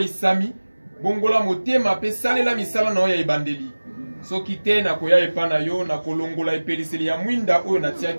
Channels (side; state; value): both; inverted; correlation -1.00